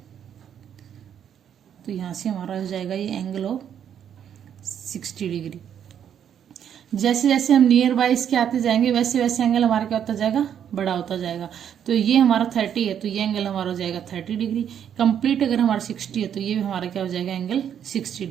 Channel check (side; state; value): left; quieter; 9.0 dB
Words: तो यहां से हमारा हो जाएगा ये एंगल ऑफ 60 डिग्री. जैसे जैसे हम नियर बाय इसके आते जाएंगे वैसे वैसे एंगल हमारा क्या होता जाएगा, बड़ा होता जाएगा. तो ये हमारा 30 है, तो ये एंगल हमारा हो जाएगा 30 डिग्री. कंप्लीट अगर हमारा 60 है तो ये भी हमारा क्या हो जाएगा, एंगल 60